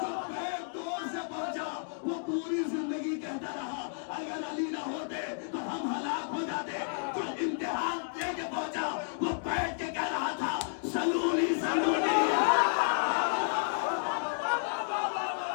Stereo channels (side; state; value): right; silent; digital silence